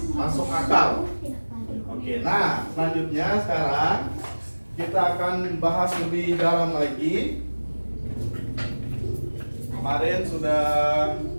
masuk akal. Oke, nah selanjutnya sekarang kita akan bahas lebih dalam lagi. Kemarin sudah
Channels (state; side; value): inverted; both; correlation -1.00